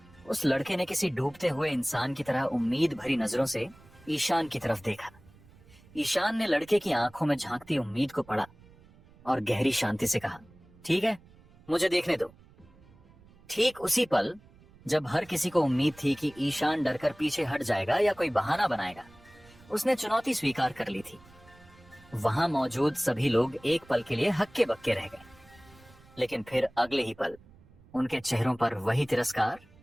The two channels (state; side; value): noise; right; rumble, 25 dB below the sound